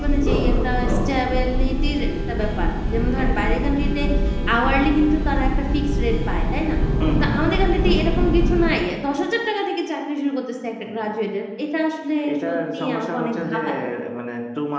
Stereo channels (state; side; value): identical; both; correlation 1.00